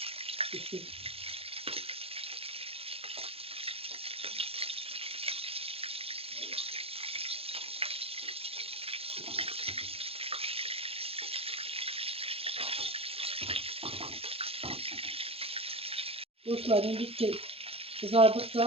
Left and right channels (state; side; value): late; left; 0.28 ms